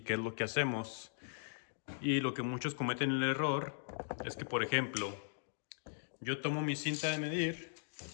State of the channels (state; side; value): silent; right; digital silence